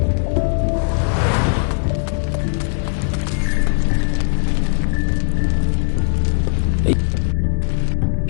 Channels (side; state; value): right; silent; digital silence